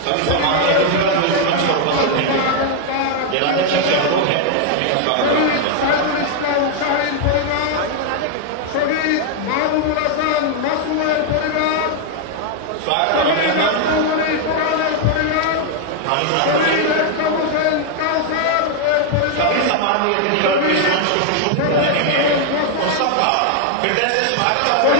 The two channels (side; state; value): both; different; correlation 0.00